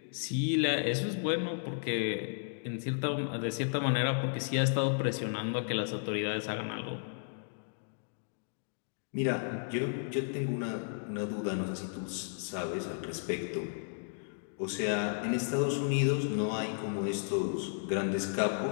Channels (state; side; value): silent; right; digital silence